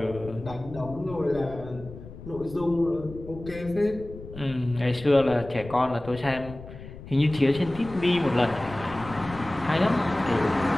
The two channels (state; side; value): noise; left; rumble, 14 dB below the sound